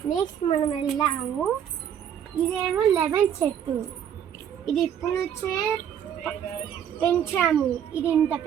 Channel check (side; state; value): left; quieter; 9.1 dB